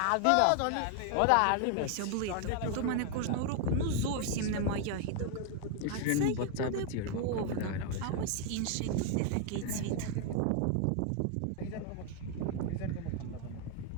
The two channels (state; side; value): different; both; correlation 0.00